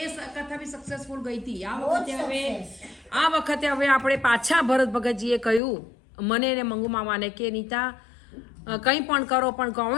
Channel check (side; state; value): right; drops out; at 5.6 s